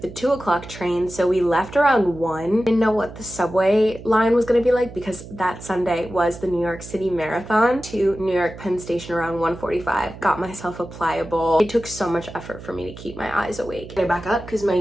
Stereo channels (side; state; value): right; noise; hum, 15 dB below the sound